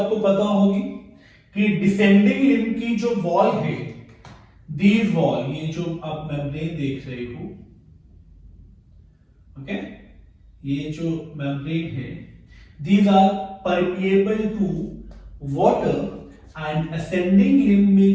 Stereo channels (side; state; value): both; identical; correlation 1.00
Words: पता होगी कि डिसेंडिंग लिम्ब की जो वॉल है, दीज वॉल, ये जो आप मेम्ब्रेन देख रहे हो, ओके, ये जो मेम्ब्रेन है, these are permeable to water and ascending limb में